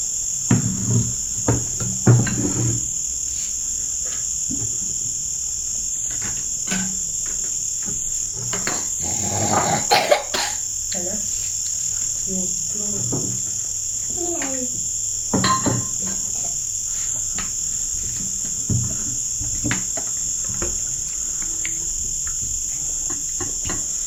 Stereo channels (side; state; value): both; identical; correlation 1.00